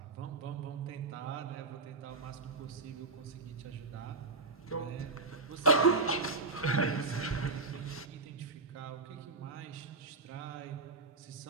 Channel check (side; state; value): left; quieter; 3.7 dB